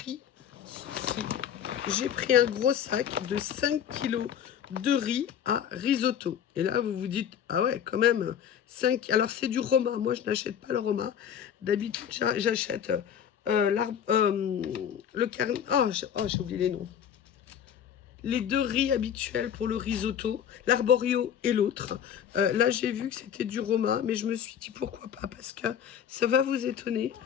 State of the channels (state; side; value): quieter; right; 8.9 dB